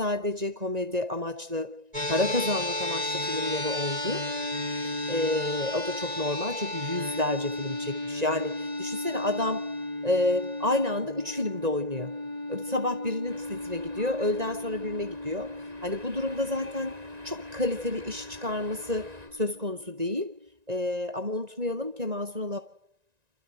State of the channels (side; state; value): left; late; 1.9 ms